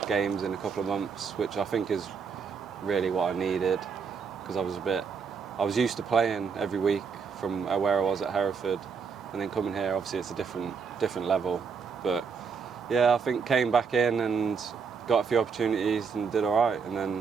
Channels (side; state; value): left; quieter; 5.8 dB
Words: games in a couple of months, which I think is really what I needed, because I was used to playing every week from where I was at Hereford, and then coming here, obviously it's a different level. But yeah, I think came back in and got a few opportunities and did all right, and